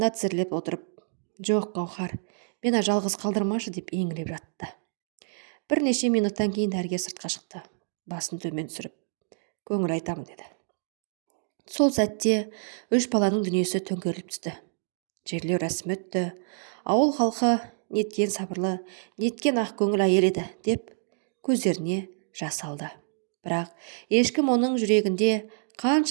тізерлеп отырып, жоқ, Гаухар, мені жалғыз қалдырмашы деп еңіреп жатты. Бірнеше минуттан кейін дәрігер сыртқа шықты. Басын төмен түсіріп, көңіл айтамын деді. Сол сәтте 3 баланың дүниесі төңкеріліп түсті. Жерлеу рәсімі өтті. Ауыл халқы неткен сабырлы, неткен ақ көңіл әйел еді деп көздеріне жас алды. Бірақ ешкім оның жүрегінде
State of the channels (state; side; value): silent; left; digital silence